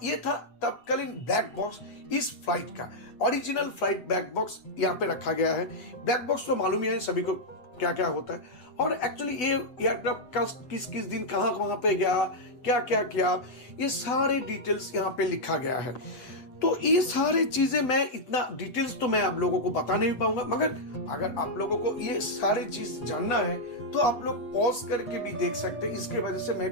ये था तत्कालीन ब्लैक बॉक्स इस फ्लाइट का, ओरिजिनल फ्लाइट ब्लैक बॉक्स यहाँ पे रखा गया है। ब्लैक बॉक्स तो मालूम ही है सभी को क्या क्या होता है। और एक्चुअली ये एयरक्राफ्ट किस किस दिन कहां पे गया, क्या क्या किया, ये सारे डिटेल्स यहाँ पे लिखा गया है। तो ये सारे चीजें मैं इतना डिटेल्स तो मैं आप लोगों को बता नहीं पाऊंगा, मगर अगर आप लोगों को ये सारी चीज जानना है तो आप लोग पॉज करके भी देख सकते हैं। इसके वजह से मैं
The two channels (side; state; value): right; late; 8.0 ms